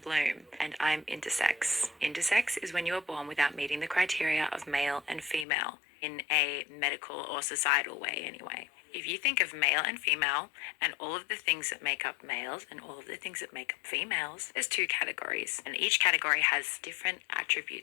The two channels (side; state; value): right; drops out; at 5.5 s